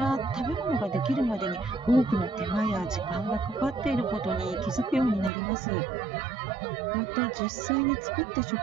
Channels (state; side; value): drops out; left; at 5.3 s